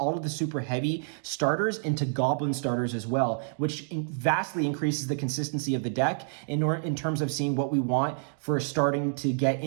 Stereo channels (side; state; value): left; silent; digital silence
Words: of the Super Heavy starters into Goblin starters as well, which vastly increases the consistency of the deck in terms of seeing what we want for starting to get